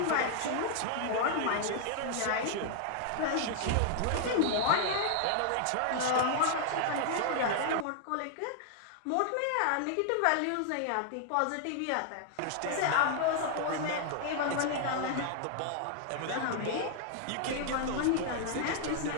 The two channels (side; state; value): both; different; correlation 0.00